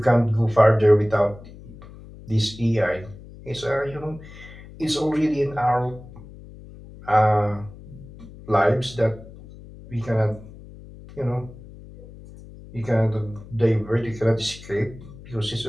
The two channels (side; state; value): left; noise; hum, 18 dB below the sound